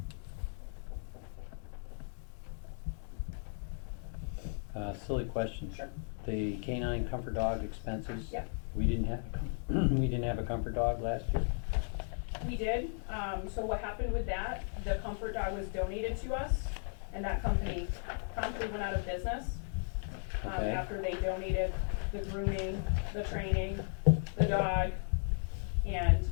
1,800. Silly question. Sure. The canine comfort dog expenses? Yeah. We didn't have we didn't have a comfort dog last year? We did. So what happened with that, the comfort dog was donated to us, and that company promptly went out of business. Okay. After they donated the grooming, the training, the dog, and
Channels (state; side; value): silent; right; 54 dB below the other